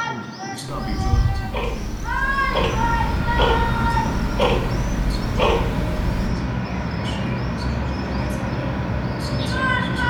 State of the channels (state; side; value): identical; both; correlation 1.00